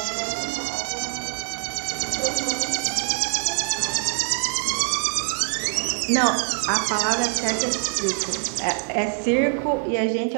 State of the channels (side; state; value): left; silent; 61 dB below the other